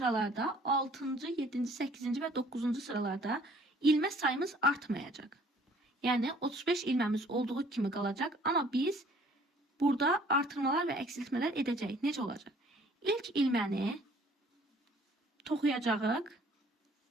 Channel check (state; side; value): normal; both; correlation 0.57